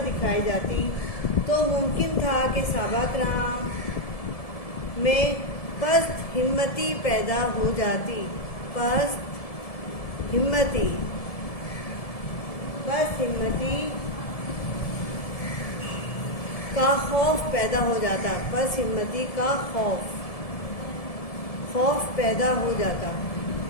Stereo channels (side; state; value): right; late; 1.7 ms